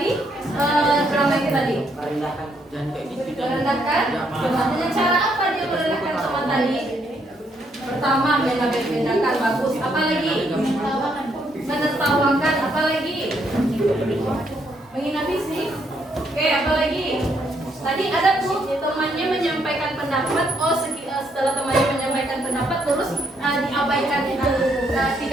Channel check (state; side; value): normal; both; correlation 0.73